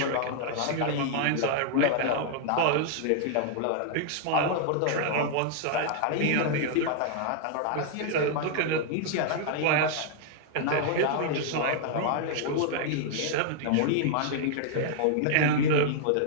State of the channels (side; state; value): both; different; correlation -0.01